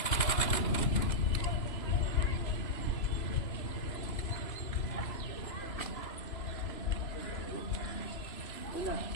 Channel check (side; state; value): right; late; 3.0 ms